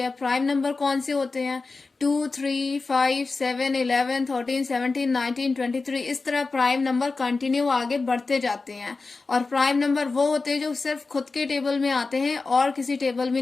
प्राइम नंबर कौन से होते हैं? 2 3 5 7 11 13 17 19 23। इस तरह प्राइम नंबर कंटिन्यू आगे बढ़ते जाते हैं। और प्राइम नंबर वो होते हैं जो सिर्फ खुद के टेबल में आते हैं और किसी टेबल में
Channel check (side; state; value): right; quieter; 3.9 dB